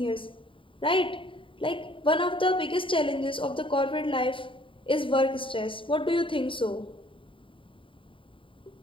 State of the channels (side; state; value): right; late; 0.25 ms